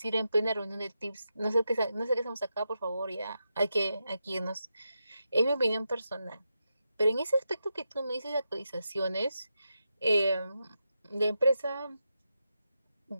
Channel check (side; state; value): both; inverted; correlation -0.87